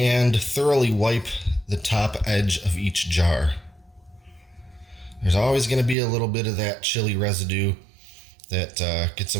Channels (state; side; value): drops out; left; at 6.0 s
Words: thoroughly wipe the top edge of each jar. There's always going to be a little bit of that chili residue that gets